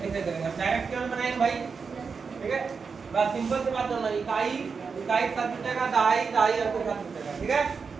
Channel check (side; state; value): left; quieter; 5.3 dB